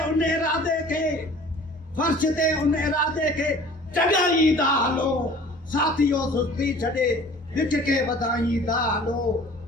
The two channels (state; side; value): normal; both; correlation 0.47